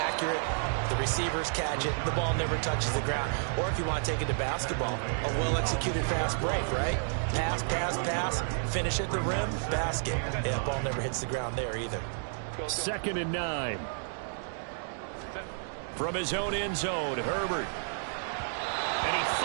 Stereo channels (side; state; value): left; silent; digital silence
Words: The receivers catch it. The ball never touches the ground. Or if you want to take it to basketball, a well-executed fast break, right? Pass, pass, pass. Finish at the rim, basket. Yeah, the ball never hits the ground there either. 2nd and 9. From his own end zone, Herbert. And he